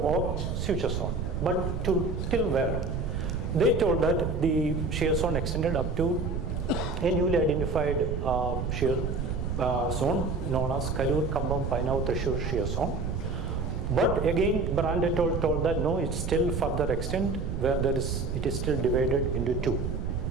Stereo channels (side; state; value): right; noise; rumble, 2 dB below the sound